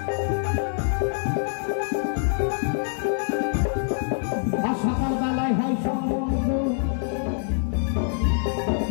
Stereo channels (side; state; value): right; silent; 62 dB below the other